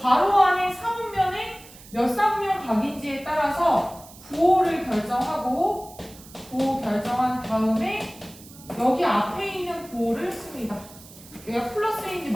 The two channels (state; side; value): noise; right; hiss, 20 dB below the sound